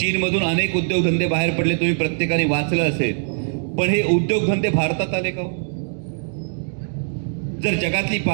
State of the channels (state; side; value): silent; left; 59 dB below the other